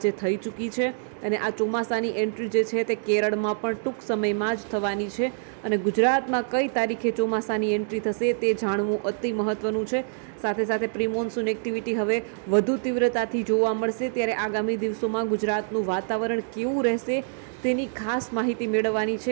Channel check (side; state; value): left; silent; digital silence